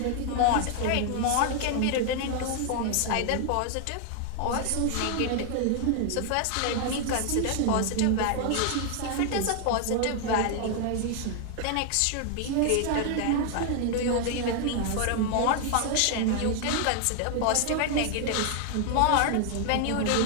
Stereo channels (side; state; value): both; different; correlation 0.00